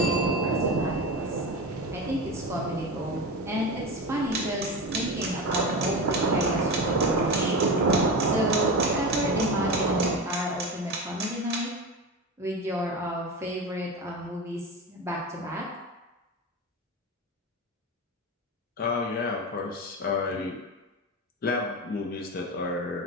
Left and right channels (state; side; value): normal; both; correlation 0.23